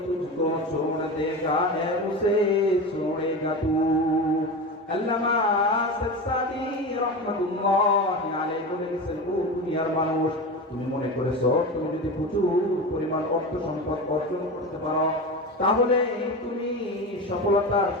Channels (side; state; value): both; normal; correlation 0.25